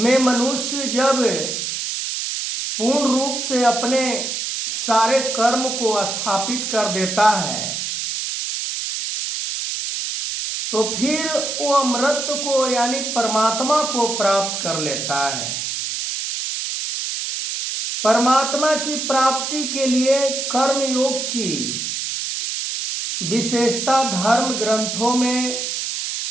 मनुष्य जब पूर्ण रूप से अपने सारे कर्म को स्थापित कर देता है तो फिर वो अमृत को यानी परमात्मा को प्राप्त कर लेता है। परमात्मा की प्राप्ति के लिए कर्म योग की विशेषता धर्म ग्रंथों में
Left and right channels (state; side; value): noise; right; hiss, 3 dB below the sound